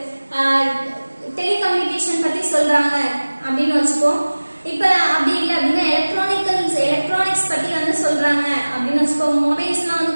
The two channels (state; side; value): inverted; both; correlation -1.00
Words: டெலிகம்யூனிகேஷன் பத்தி சொல்றாங்க அப்படின்னு வச்சுக்கோ. இப்ப அப்படி இல்லை அப்படின்னா எலக்ட்ரானிக்ஸ் பத்தி வந்து சொல்றாங்க அப்படின்னு வச்சுக்கோ. மொபைல்ஸ்லாம்